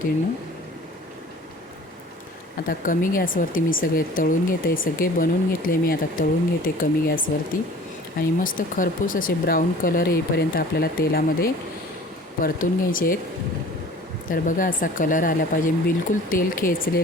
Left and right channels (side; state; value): both; normal; correlation 0.46